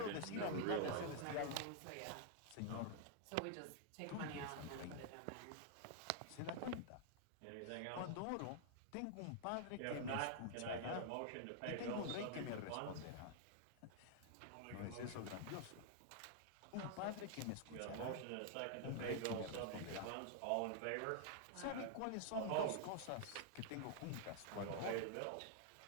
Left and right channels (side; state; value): both; different; correlation -0.01